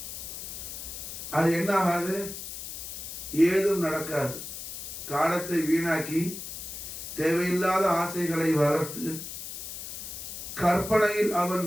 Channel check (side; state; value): left; noise; hiss, 9 dB below the sound